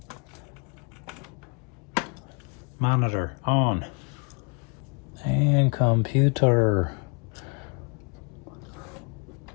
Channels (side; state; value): right; quieter; 34.5 dB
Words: Monitor on. And computer.